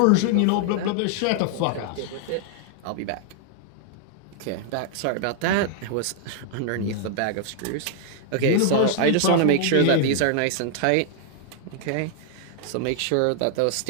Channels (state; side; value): different; both; correlation 0.00